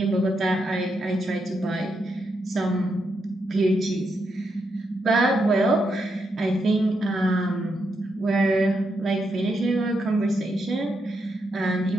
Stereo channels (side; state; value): both; normal; correlation 0.82